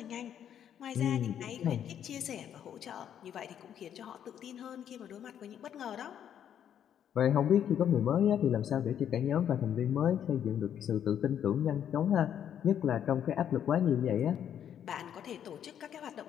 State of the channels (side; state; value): right; quieter; 9.5 dB